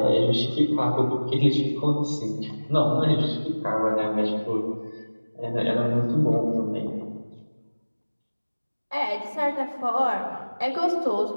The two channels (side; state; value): both; inverted; correlation -1.00